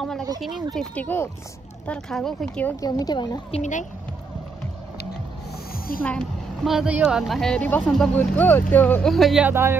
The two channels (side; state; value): left; quieter; 4.5 dB